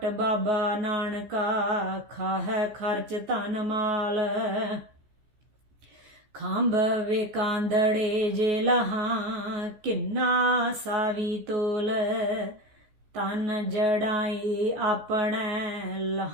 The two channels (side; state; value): left; late; 14 ms